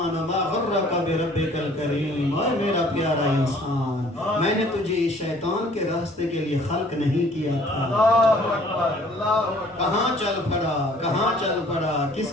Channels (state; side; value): normal; both; correlation 0.55